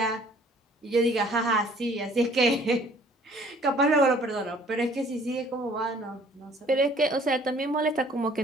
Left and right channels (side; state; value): both; normal; correlation 0.56